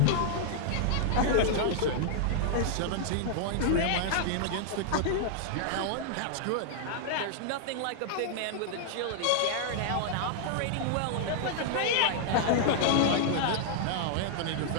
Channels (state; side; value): different; both; correlation -0.01